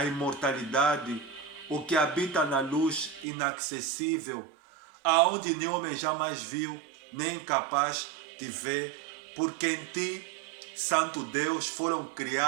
imortalidade, o que habita na luz inacessível, aonde nenhum homem jamais viu, nem capaz de ver, porque em ti, Santo Deus, foram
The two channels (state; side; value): drops out; left; at 3.2 s